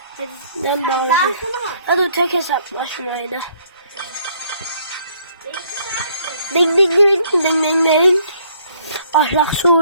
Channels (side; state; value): both; inverted; correlation -0.64